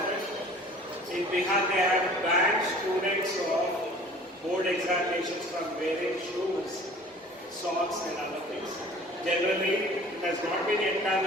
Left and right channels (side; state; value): both; normal; correlation 0.47